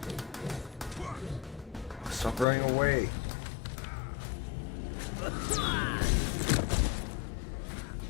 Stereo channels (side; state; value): right; drops out; at 2.5 s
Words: Stop running away.